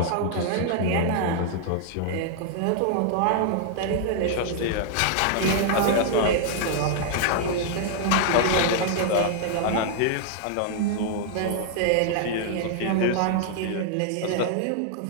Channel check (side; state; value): both; different; correlation -0.01